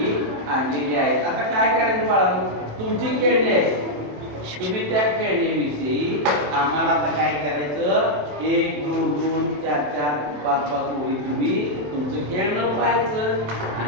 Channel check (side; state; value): left; late; 27 ms